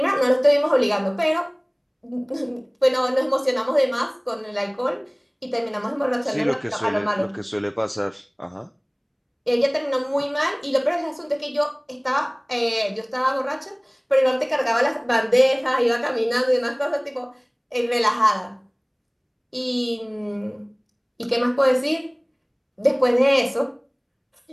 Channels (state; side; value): identical; both; correlation 1.00